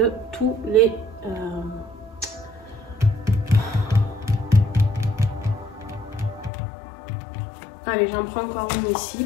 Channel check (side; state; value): right; drops out; at 6.5 s